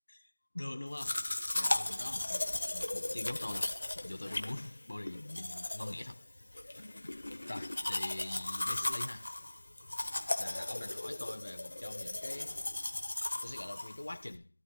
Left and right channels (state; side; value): inverted; both; correlation -1.00